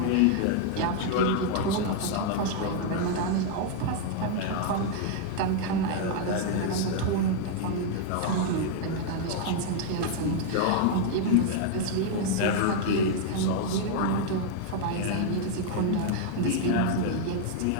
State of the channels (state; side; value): different; both; correlation 0.00